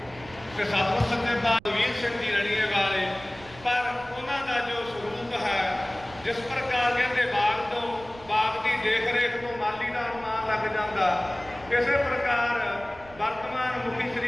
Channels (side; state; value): right; noise; rumble, 21 dB below the sound